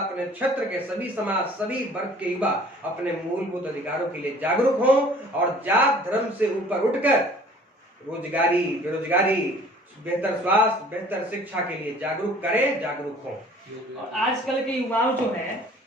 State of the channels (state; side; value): normal; both; correlation 0.51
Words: क्षेत्र के सभी समाज, सभी वर्ग के युवा अपने मूलभूत अधिकारों के लिए जागरूक हों और जात धर्म से ऊपर उठकर रोजगारी, बेरोजगारी, बेहतर स्वास्थ्य, बेहतर शिक्षा के लिए जागरूक करें, जागरूक हों। और आजकल के युवाओं जो हैं